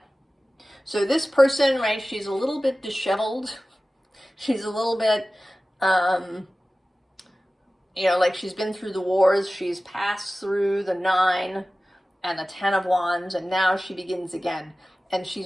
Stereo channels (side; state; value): both; normal; correlation 0.96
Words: So this person, right, she's a little bit disheveled. She's a little bit, you know, like she's been through the wars. She's passed through the 9 and the 10 of Wands, and now she begins again. And